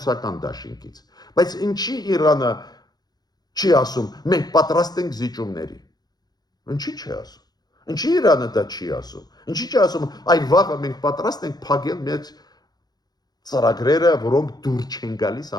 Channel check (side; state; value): right; late; 0.19 ms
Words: դաշինքից։ Բայց ինչի Իրանը չի ասում, մենք պատրաստ ենք զիջումների։ Ինչի չի ասում։ Ինչի Իրանը դա չի ասում։ Ինչի չի ասում, այ վաղը մենք պատրաստ ենք փակել մեր ծրագրերը, որոնք դուր չեն գալիս